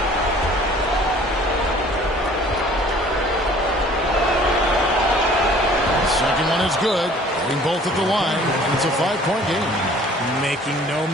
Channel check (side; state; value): both; normal; correlation 0.52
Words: The second one is good. Getting both at the line, and it's a 5-point game. Making no